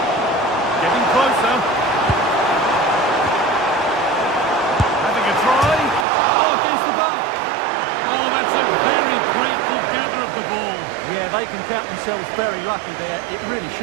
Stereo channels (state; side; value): drops out; left; at 6.1 s